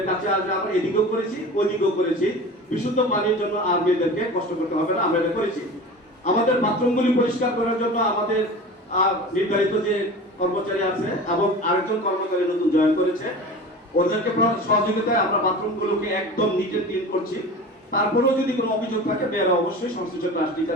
কাছে আসবে। আমরা এদিকেও করেছি ওইদিকেও করেছি, বিশুদ্ধ পানির জন্য আর মেয়েদেরকে কষ্ট করতে হবে না, আমরা এটা করেছি। আমাদের বাথরুমগুলি পরিষ্কার করার জন্য আমাদের নির্ধারিত যে কর্মচারী আছে এবং আরেকজন কর্মচারী নতুন জয়েন করেছে, ওদেরকে সহযোগিতায় আমরা বাথরুমগুলোকে একদম নিট এন্ড ক্লিন করছি। তারপরেও যদি কোনো অভিযোগ থাকে মেয়েরা অবশ্যই সংশ্লিষ্ট ক্লাস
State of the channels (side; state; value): both; normal; correlation 0.35